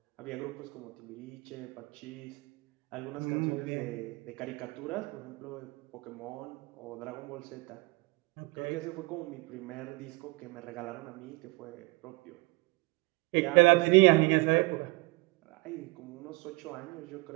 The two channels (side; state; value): left; quieter; 24.7 dB